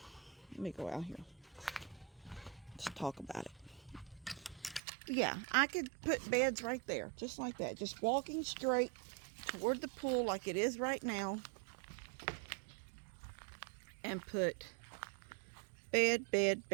me go out here. Let's talk about it. Yeah, I could put beds right there, just like that. Just walking straight toward the pool like it is right now. And put bed.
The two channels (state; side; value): drops out; left; at 4.8 s